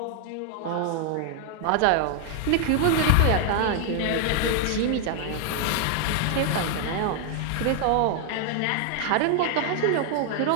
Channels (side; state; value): both; different; correlation 0.00